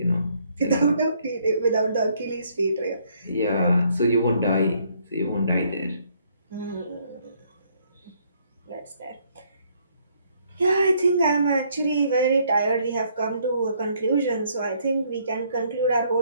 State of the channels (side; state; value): both; inverted; correlation -0.68